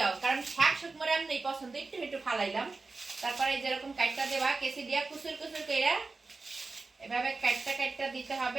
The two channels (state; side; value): quieter; left; 3.8 dB